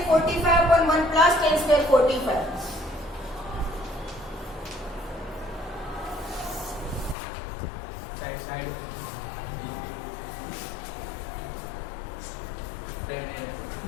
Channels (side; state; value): right; drops out; at 7.2 s